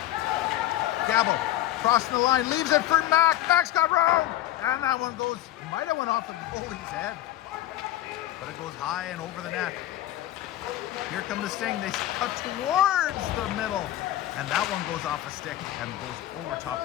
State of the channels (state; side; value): quieter; right; 14.0 dB